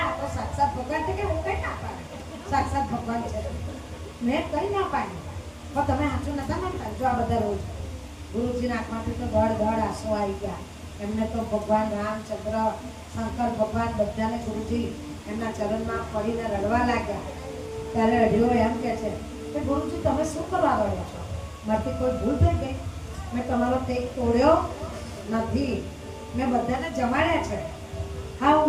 તો સાક્ષાત ભગવાન છે. કે હું કઈ ના પાડું, સાક્ષાત ભગવાન છે મેં કઈ ના પાડ્યું, પણ તમે સાચું નતા માનતા. જો આ બધા રોજ ગુરુજીના આંખમાંથી તો દોડ આંસુ આવી ગયા. એમને તો ભગવાન રામચંદ્ર, શંકર ભગવાન બધાને ગુરુજી એમના ચરણમાં પડીને રડવા લાગ્યા. ત્યારે અઢિયો એમ કે છે કે ગુરુજી તમે શું કરવા રડો છો, મારાથી કોઈ ભૂલ થઈ ગઈ? મેં તમારો ટેક તોડ્યો નથી, મેં બધાને જમાડ્યા છે. હા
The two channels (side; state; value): both; identical; correlation 1.00